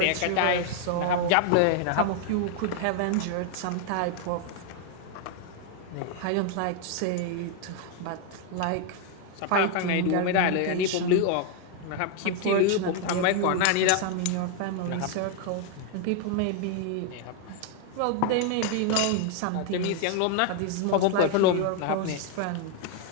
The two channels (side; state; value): both; different; correlation 0.00